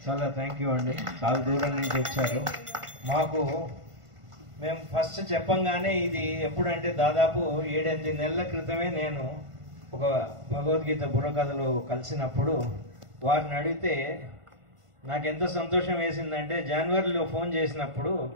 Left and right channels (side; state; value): left; late; 1.5 ms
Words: చాలా థ్యాంక్ యూ అండి. చాలా దూరం నుంచి వచ్చారు. మేము ఫస్ట్ చెప్పంగానే ఇది ఎప్పుడంటే దాదాపు 7-8 నెలల క్రితమే నేను ఒక భగవద్గీత బుర్రకథలు కలిసినప్పుడు వారిని అడిగితే నాకు ఎంత సంతోషం వేసిందంటే, జనవరిలో ఫోన్ చేసినప్పుడు